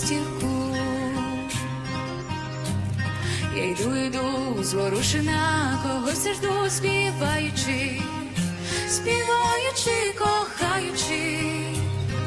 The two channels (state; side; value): identical; both; correlation 1.00